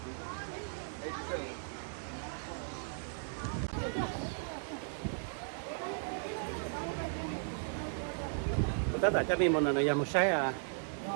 tất cả các mình một lần một sai à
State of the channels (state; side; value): silent; left; digital silence